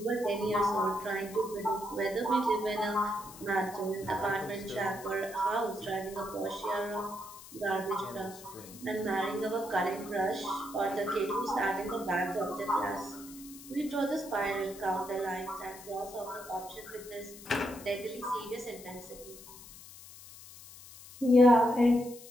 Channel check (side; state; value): left; noise; hiss, 17 dB below the sound